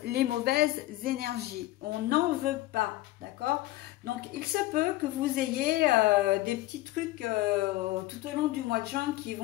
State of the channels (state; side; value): quieter; right; 17.2 dB